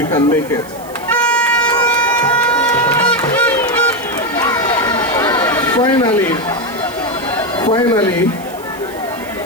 can make it. Finally,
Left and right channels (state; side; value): noise; right; hiss, 20 dB below the sound